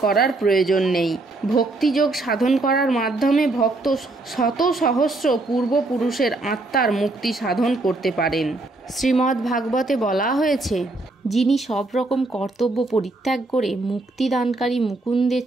করার প্রয়োজন নেই। ভক্তিযোগ সাধন করার মাধ্যমে ভক্ত শত সহস্র পূর্বপুরুষের আত্মার মুক্তি সাধন করতে পারেন। শ্রীমদ্ ভাগবতে বলা হয়েছে, যিনি সব রকম কর্তব্য পরিত্যাগ করে মুক্তিদানকারী মুকুন্দের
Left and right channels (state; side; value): quieter; left; 3.0 dB